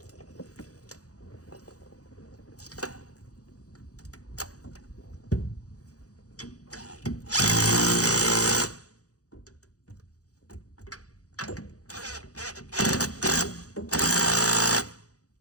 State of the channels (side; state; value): right; late; 0.67 ms